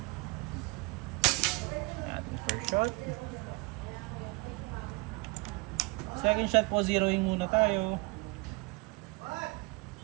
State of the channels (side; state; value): left; quieter; 27.6 dB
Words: Shot. Second shot po, zeroing muna tayo.